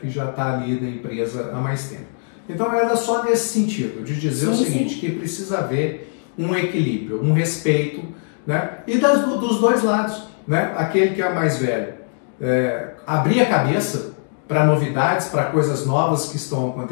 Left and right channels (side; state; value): right; silent; 65 dB below the other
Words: já está ali na empresa há mais tempo. Então era só nesse sentido, de dizer o seguinte, que precisa haver um equilíbrio, um respeito, né? E dos dois lados, né? Aquele que é mais velho, abrir a cabeça para novidades, para coisas novas que estão